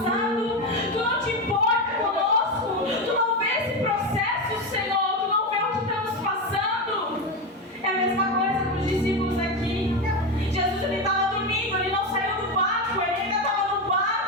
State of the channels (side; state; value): both; normal; correlation 0.15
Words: tu não te importa conosco, tu não vê esse processo, Senhor, tu não vê o que estamos passando. É a mesma coisa com os discípulos aqui. Jesus, ele estava dormindo, ele não saiu do barco, ele ainda estava no